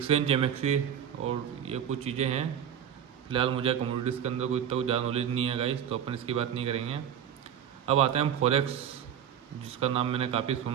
एमएक्सी, और ये कुछ चीज़ें हैं। फिलहाल मुझे कमोडिटीज़ के अंदर कोई इतना कुछ ज़्यादा नॉलेज नहीं है गाइस, तो अपन इसकी बात नहीं करेंगे। अब आते हैं हम फॉरेक्स, जिसका नाम मैंने काफ़ी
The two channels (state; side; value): quieter; left; 9.1 dB